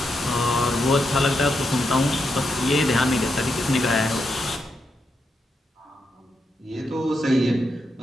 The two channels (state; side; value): normal; both; correlation 0.83